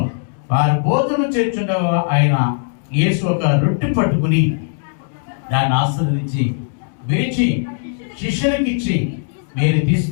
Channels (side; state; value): right; silent; 67 dB below the other